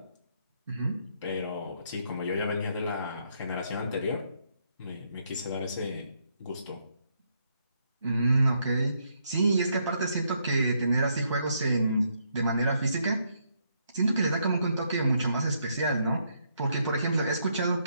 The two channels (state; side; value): inverted; both; correlation -0.74